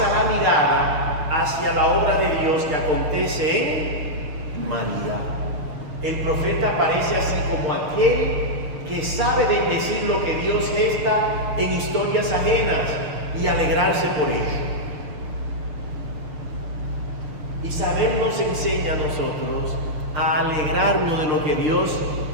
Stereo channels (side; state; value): left; late; 6.6 ms